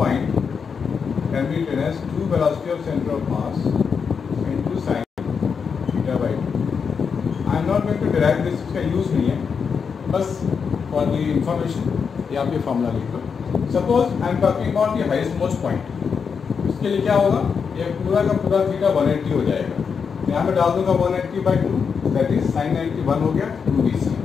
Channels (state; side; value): quieter; right; 6.1 dB